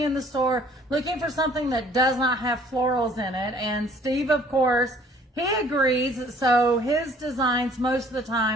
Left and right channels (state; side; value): normal; both; correlation 0.56